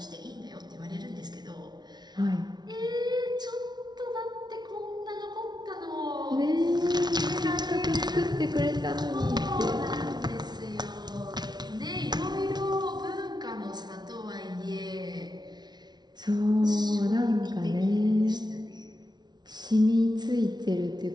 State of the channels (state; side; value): late; left; 0.20 ms